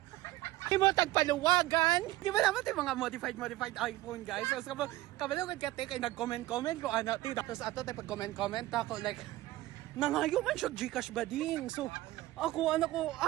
Di mo tagpaluwagan. Di ba naman yung mga modified iPhone guys. So, kabalo kay kate kay nag-comment ko ana ti. Tapos ato tay pag-comment ako like nangayo man siya GCash bading. So, ako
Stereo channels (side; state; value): left; quieter; 17.1 dB